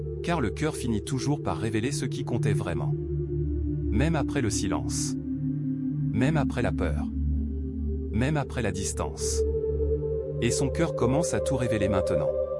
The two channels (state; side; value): identical; both; correlation 1.00